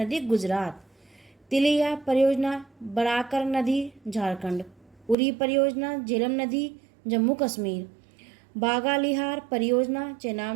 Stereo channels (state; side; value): drops out; left; at 5.2 s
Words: गुजरात। तिलिया परियोजना बराकर नदी झारखंड। उरी परियोजना झेलम नदी जम्मू कश्मीर। बागालिहार परियोजना